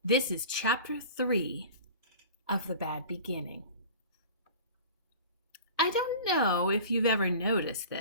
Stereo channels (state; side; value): inverted; both; correlation -0.39